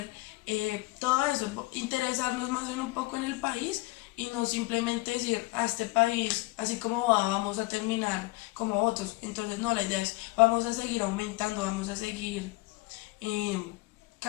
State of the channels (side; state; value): right; quieter; 22.6 dB